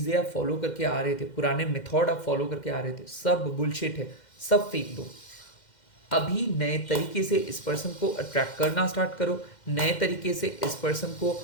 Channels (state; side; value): late; right; 2.1 ms